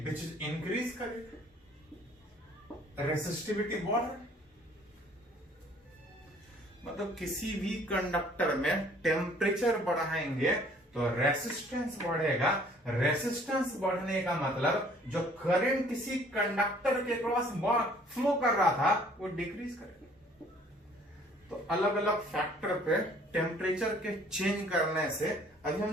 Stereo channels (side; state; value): both; normal; correlation 0.57